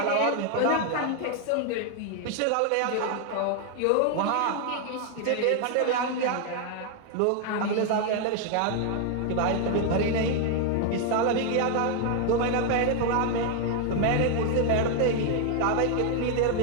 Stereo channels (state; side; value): different; both; correlation 0.00